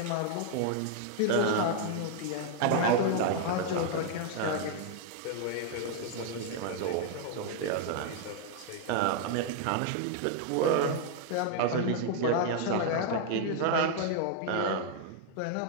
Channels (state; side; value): different; both; correlation 0.00